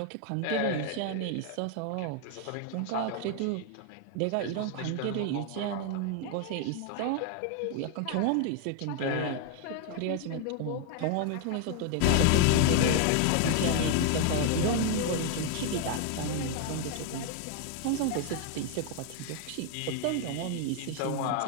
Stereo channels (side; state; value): both; different; correlation 0.01